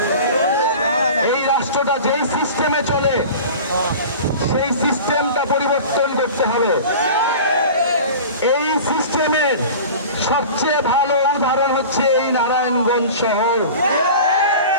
এই রাষ্ট্রটা যেই সিস্টেমে চলে সেই সিস্টেমটা পরিবর্তন করতে হবে। এই সিস্টেমের সবচেয়ে ভালো উদাহরণ হচ্ছে এই নারায়ণগঞ্জ শহর,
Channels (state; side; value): inverted; both; correlation -0.37